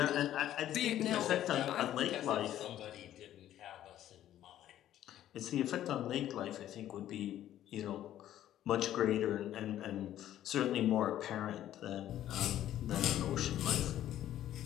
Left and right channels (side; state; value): right; quieter; 12.2 dB